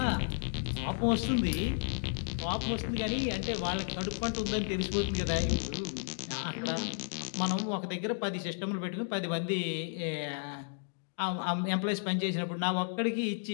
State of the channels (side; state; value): right; silent; digital silence